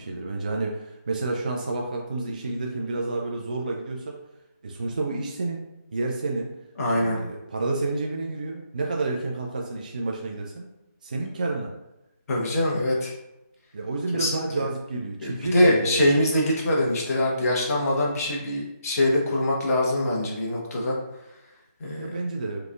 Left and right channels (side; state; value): both; inverted; correlation -0.77